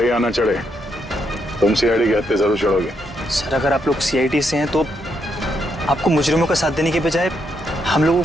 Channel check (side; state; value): both; normal; correlation 0.78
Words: या ना चढ़े, तुम सीआईडी के हत्थे जरूर चढ़ोगे। सर अगर आप लोग सीआईडी से हैं तो आपको मुजरिमों का साथ देने के बजाय हम लोगों